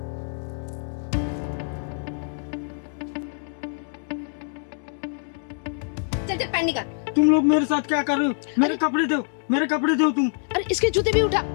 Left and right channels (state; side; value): silent; right; 62 dB below the other